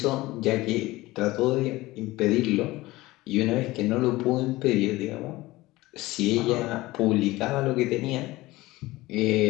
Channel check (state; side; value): quieter; right; 19.1 dB